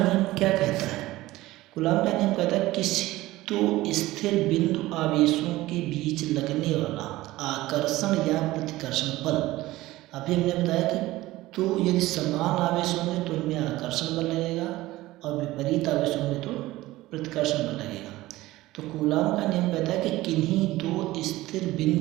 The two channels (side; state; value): left; quieter; 17.6 dB